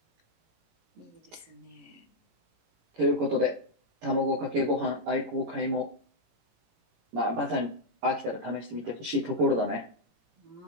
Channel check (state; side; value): late; left; 18 ms